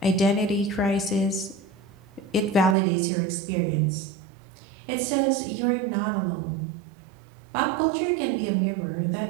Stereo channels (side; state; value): left; drops out; at 2.8 s